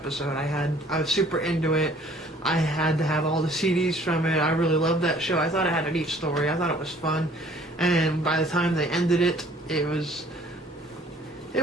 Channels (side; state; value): both; normal; correlation 0.56